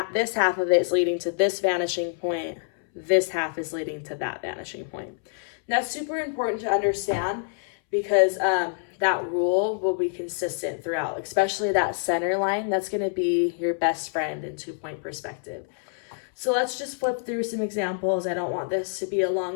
half of it is leading to this vanishing point. This half is leading to that vanishing point. And that's super important to understand because that rule will be consistent throughout, especially that center line. That's going to be your best friend in 2-point perspective. So let's just flip through some examples. I don't want this to be a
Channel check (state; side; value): silent; right; 61 dB below the other